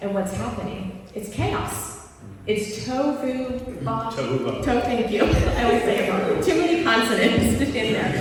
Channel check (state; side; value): identical; both; correlation 1.00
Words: And what's happening? It's chaos. It's tohu, thank you. I always say it wrong. Too many consonants in